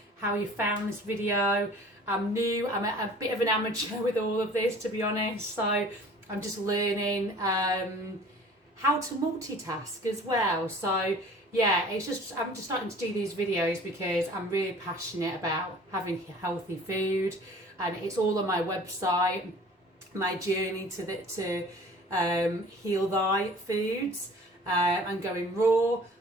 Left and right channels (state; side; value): normal; both; correlation 0.47